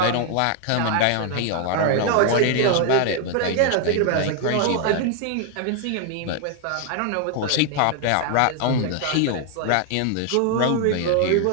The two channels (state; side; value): different; both; correlation 0.00